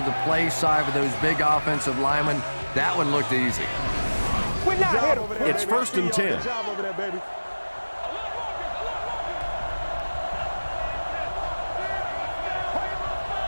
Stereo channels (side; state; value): both; inverted; correlation -1.00